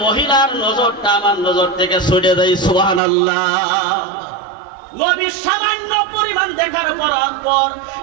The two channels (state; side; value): drops out; left; at 3.0 s